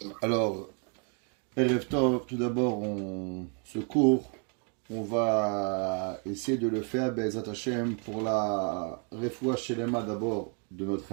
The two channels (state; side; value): quieter; left; 39.5 dB